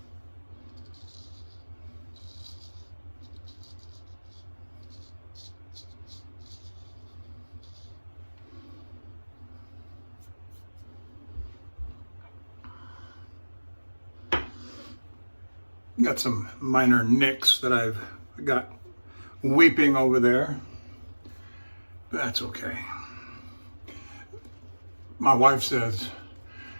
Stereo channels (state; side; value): inverted; both; correlation -1.00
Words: Got some minor nicks that I've got weeping over there. That's okay. My wife says,